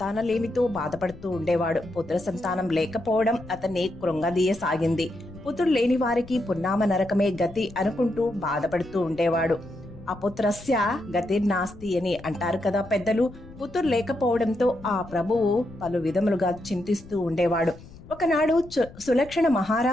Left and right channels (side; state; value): left; noise; rumble, 19 dB below the sound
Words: బాధపడుతూ ఉండేవాడు. పుత్ర సంతానం లేకపోవడం అతన్ని కృంగదీయసాగింది. పుత్రులు లేని వారికి పున్నామ నరకమే గతి అనుకుంటూ బాధపడుతూ ఉండేవాడు. అపుత్రస్య గతిర్నాస్తి అని అంటారు కదా పెద్దలు. పుత్రులు లేకపోవడంతో ఆ ప్రభువు పలు విధములుగా చింతిస్తూ ఉండేవాడు. ఒకనాడు సులక్షణ